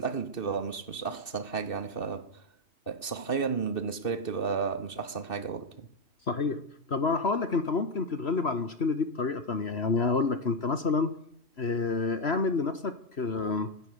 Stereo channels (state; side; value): late; right; 2.6 ms